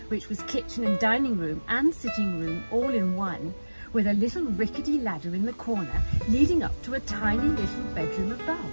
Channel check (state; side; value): inverted; both; correlation -1.00